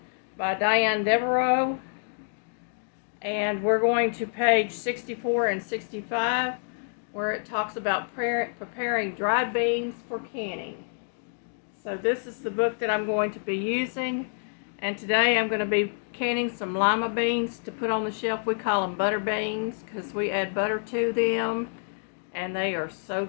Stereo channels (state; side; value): silent; right; digital silence